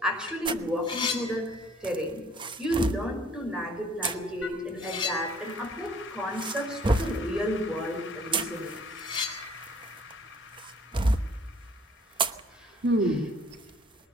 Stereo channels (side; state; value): both; normal; correlation 0.57